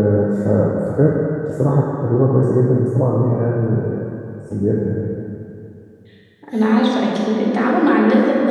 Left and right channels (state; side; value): identical; both; correlation 1.00